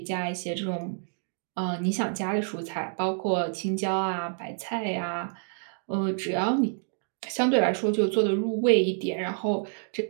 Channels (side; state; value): left; silent; 56 dB below the other